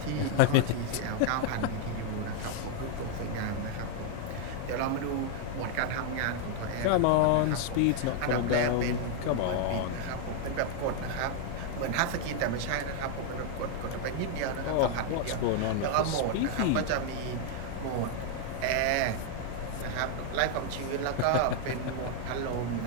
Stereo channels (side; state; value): both; different; correlation 0.00